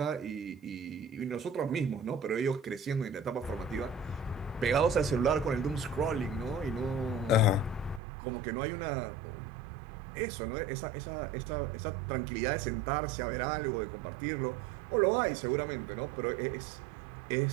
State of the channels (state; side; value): drops out; left; at 8.0 s